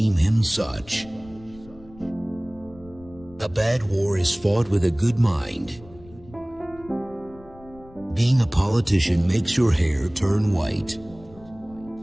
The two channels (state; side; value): noise; left; rumble, 22 dB below the sound